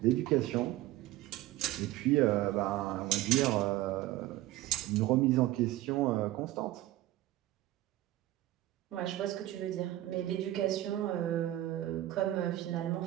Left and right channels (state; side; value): quieter; left; 15.5 dB